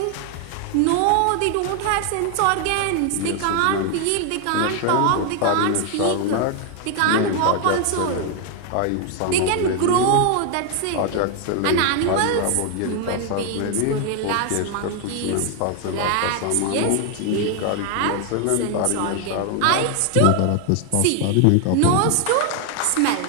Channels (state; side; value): different; both; correlation 0.01